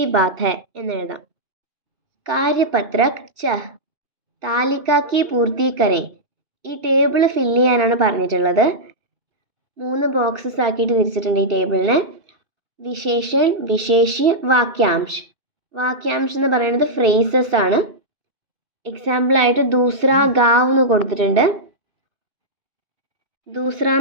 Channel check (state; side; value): late; left; 2.5 ms